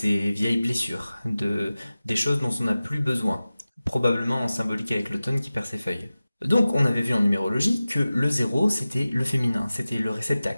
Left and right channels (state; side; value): inverted; both; correlation -0.96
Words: vieilles blessures, des choses dont on n'a plus besoin, probablement en symbolique avec l'automne qui perd ses feuilles. Donc on avait vu en numérologie que le 0, c'était le féminin, c'était le